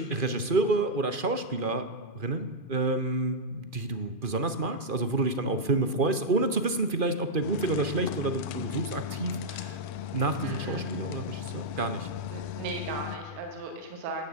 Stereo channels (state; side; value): late; left; 2.4 ms